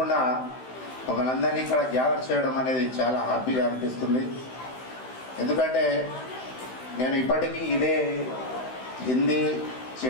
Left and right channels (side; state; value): right; late; 16 ms